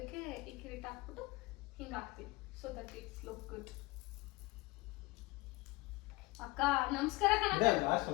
ಈ ಕಿರೀಟ ಹಾಕ್ಬಿಟ್ಟು ಹಿಂಗೆ ಹಾಕ್ತೀನಿ. So that it's look good. ಅಕ್ಕ ನಮಸ್ಕಾರ ಕಣ.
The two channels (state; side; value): quieter; right; 22.6 dB